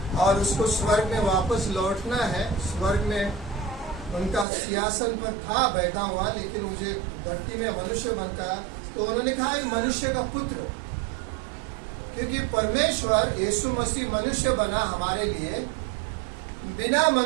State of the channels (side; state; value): left; drops out; at 4.5 s